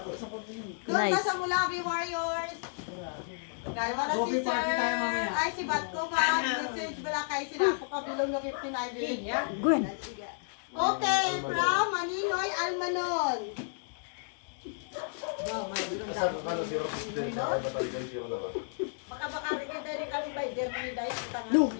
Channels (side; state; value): right; silent; digital silence